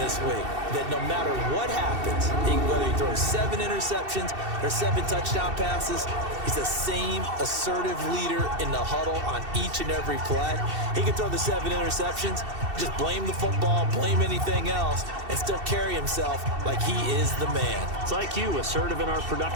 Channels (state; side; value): late; left; 2.7 ms